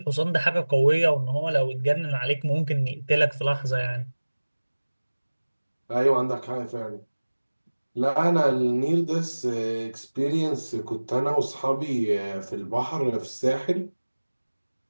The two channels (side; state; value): both; inverted; correlation -1.00